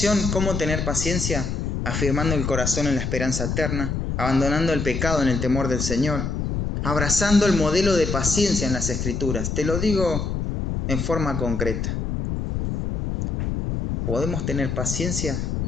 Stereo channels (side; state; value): left; noise; rumble, 2 dB below the sound